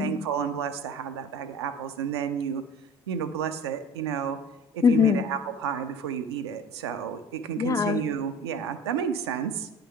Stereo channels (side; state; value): both; normal; correlation 0.41